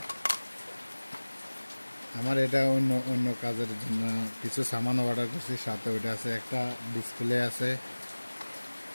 আমার এটা অন্য অন্য কাজের জন্য কিছু সামান অর্ডার করছি, সাথে ওইটা আছে, একটা ডিসপ্লে আছে,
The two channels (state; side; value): inverted; both; correlation -1.00